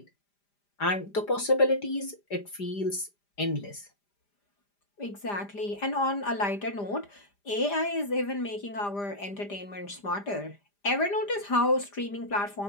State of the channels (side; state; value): right; late; 5.0 ms